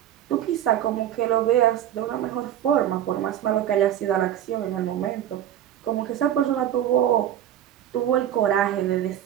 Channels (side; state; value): left; quieter; 11.1 dB